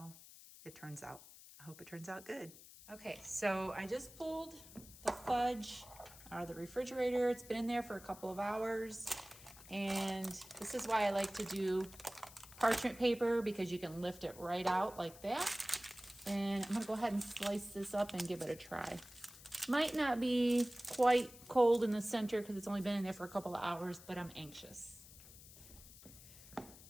it turns out. I hope it turns out good. Okay, so I just pulled the fudge out of the refrigerator. It's been in there for a couple of hours, and this is why I like to do parchment paper, because you can lift it right out like that. And I'm going to go ahead and slice this up and give it a try. Might not be quite cold in the center because it's only been in there for a couple of hours, but I'm anxious.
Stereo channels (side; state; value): left; noise; hiss, 18 dB below the sound